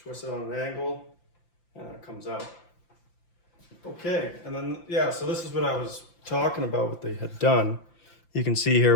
it on an angle and it comes out. Okay, and then, yeah, so this is what I was talking about, what they had done. You can see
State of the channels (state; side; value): late; right; 5.8 ms